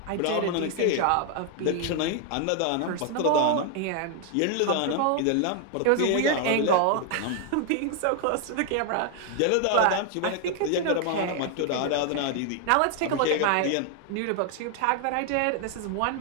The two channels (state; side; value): different; both; correlation 0.00